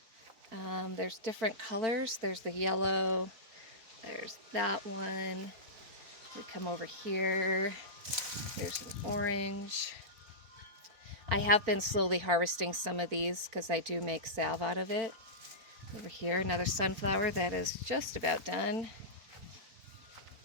There's different colors. There's the yellow. There's that one. We come over here. There's an orange. I have been slowly harvesting some of these because I do make salve out of it. Over here, another sunflower that is just about done.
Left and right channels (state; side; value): late; left; 4.4 ms